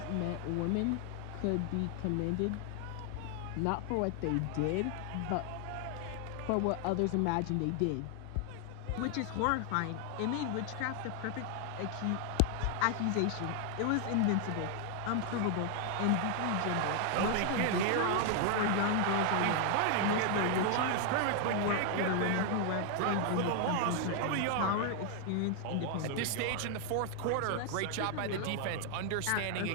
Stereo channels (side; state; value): both; different; correlation 0.00